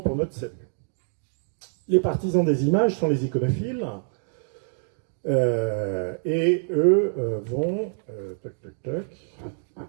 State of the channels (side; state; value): left; silent; digital silence